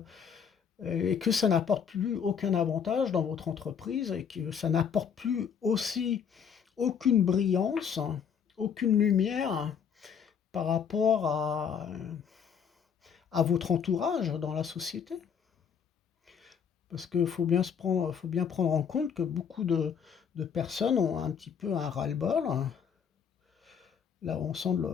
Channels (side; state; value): right; quieter; 7.2 dB